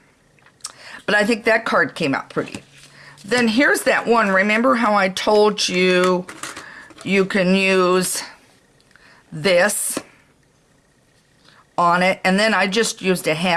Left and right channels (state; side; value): identical; both; correlation 1.00